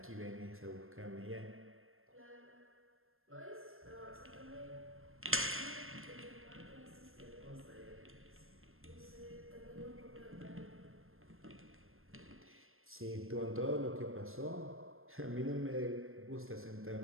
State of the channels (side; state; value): left; late; 0.61 ms